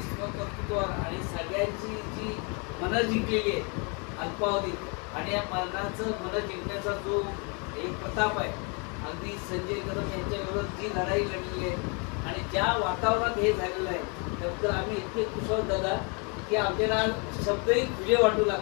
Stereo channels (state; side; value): quieter; right; 34.2 dB